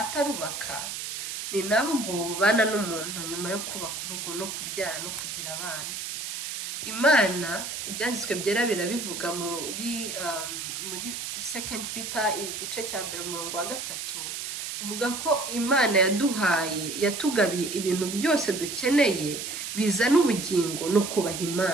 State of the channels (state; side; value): noise; right; hiss, 6 dB below the sound